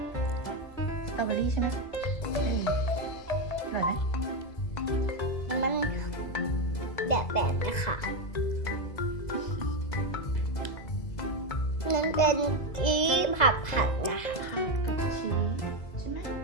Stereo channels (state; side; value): late; right; 2.0 ms